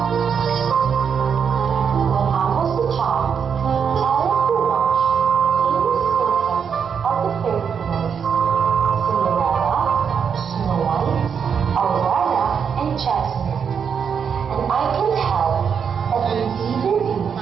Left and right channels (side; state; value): left; quieter; 7.0 dB